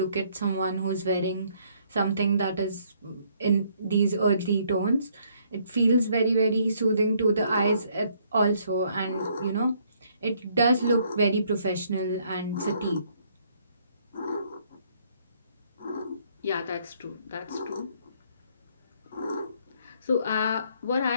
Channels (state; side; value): inverted; both; correlation -0.67